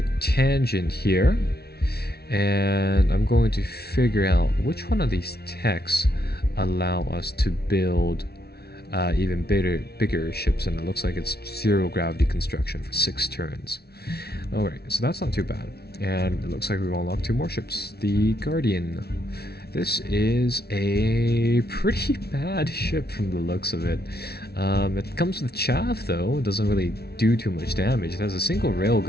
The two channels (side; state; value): right; late; 0.46 ms